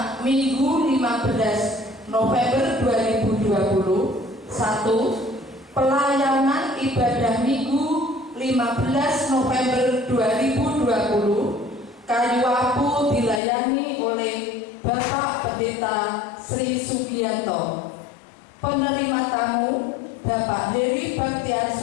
Minggu 15 November 2020. 1. Pelayanan ibadah Minggu 15 November 2020. Kayu Apu dilayani oleh Bapak Pendeta Sri Sugianto. Penerima tamu Bapak Heri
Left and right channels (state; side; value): drops out; right; at 13.4 s